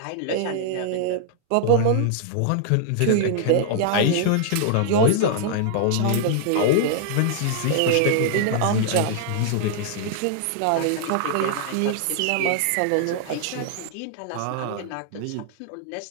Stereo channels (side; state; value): both; different; correlation -0.01